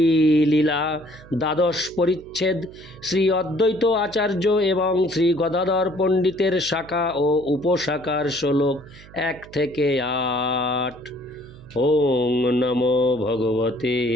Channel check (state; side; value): noise; right; hum, 21 dB below the sound